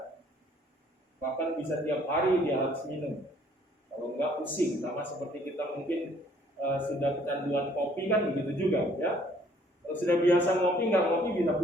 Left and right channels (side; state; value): both; normal; correlation 0.61